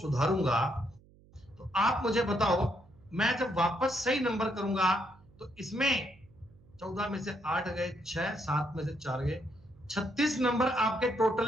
तो आप मुझे बताओ, मैं जब वापस सही नंबर करूंगा तो इसमें 14 में से 8 गए 6, 7 में से 4 गए 36 नंबर आपके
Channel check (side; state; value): right; noise; hum, 27 dB below the sound